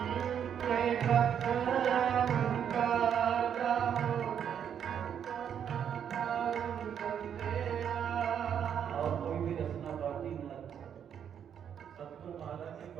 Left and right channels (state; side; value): quieter; left; 8.5 dB